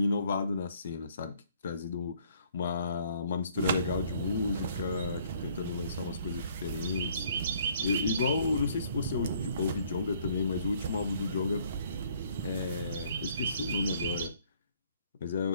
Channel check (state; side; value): inverted; both; correlation -0.62